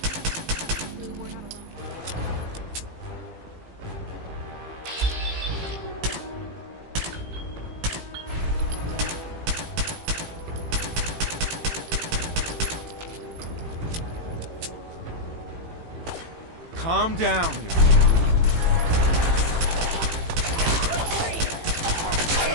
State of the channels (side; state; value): left; late; 18 ms